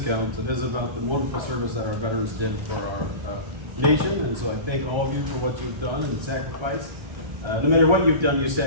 it is about the wonderful service that our veterans did for our nation. And so I thank all of you for what you've done and sacrificed. No matter what you've done, you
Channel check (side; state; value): left; late; 1.3 ms